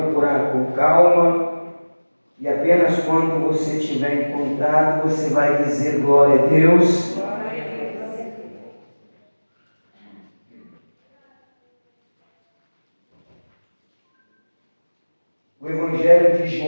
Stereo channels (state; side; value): inverted; both; correlation -1.00